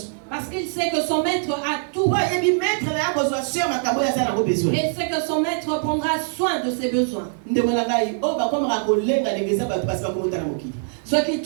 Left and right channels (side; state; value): left; silent; digital silence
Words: Parce qu'il sait que son maître a tout. Et il sait que son maître prendra soin de ses besoins. Ceux qui